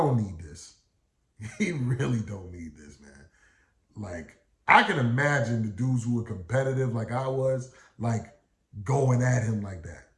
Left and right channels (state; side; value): identical; both; correlation 1.00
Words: need this. He really don't need this, man. Like, I can imagine the dudes who were competitive like I was, like, going at him like that.